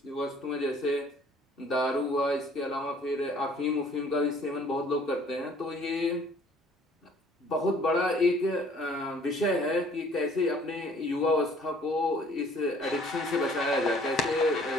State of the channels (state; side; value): normal; both; correlation 0.56